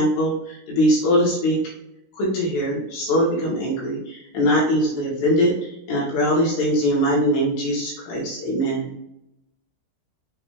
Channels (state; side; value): late; right; 16 ms